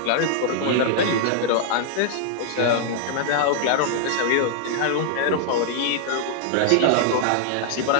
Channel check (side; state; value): both; different; correlation -0.01